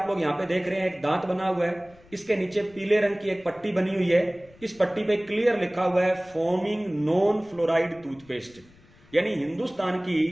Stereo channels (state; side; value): noise; left; rumble, 27 dB below the sound